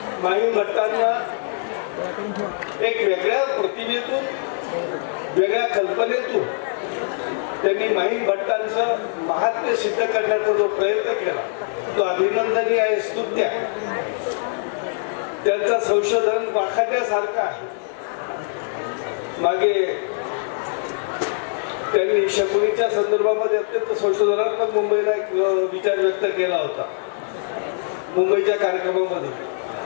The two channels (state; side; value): silent; right; digital silence